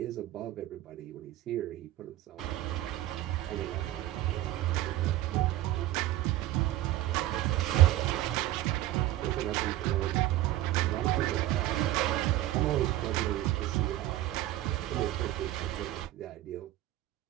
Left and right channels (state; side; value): quieter; left; 15.1 dB